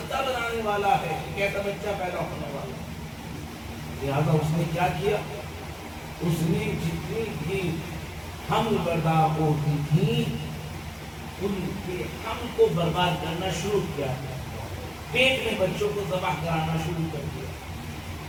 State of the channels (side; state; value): both; identical; correlation 1.00